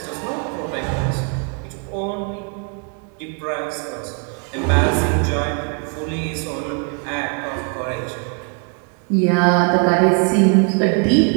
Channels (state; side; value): quieter; left; 36.7 dB